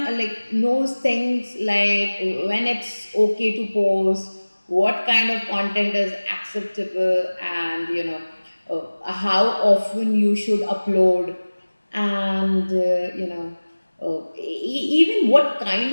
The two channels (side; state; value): both; inverted; correlation -1.00